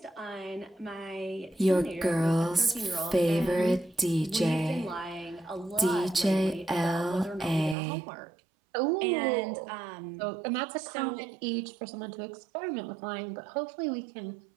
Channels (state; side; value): drops out; left; at 7.8 s